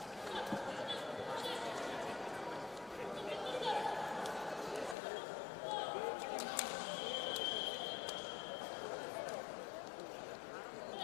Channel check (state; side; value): drops out; right; at 5.0 s